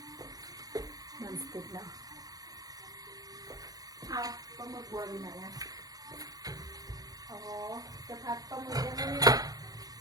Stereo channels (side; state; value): left; late; 0.18 ms